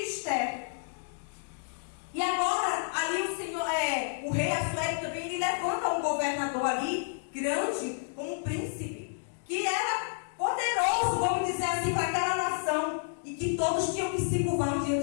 E agora, ali o Senhor, o rei Assuero também, ele levanta um governador ali, grande, como um príncipe, que era poderoso, vamos dizer assim, para aquela nação, e que todos tinham que se curvar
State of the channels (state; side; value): silent; right; digital silence